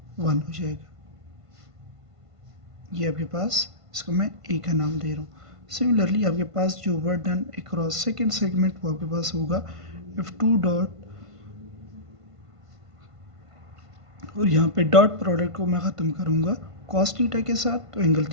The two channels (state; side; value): late; left; 1.5 ms